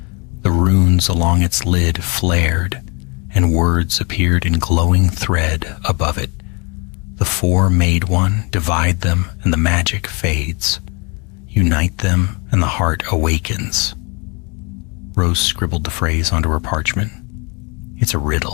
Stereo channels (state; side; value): quieter; right; 31.3 dB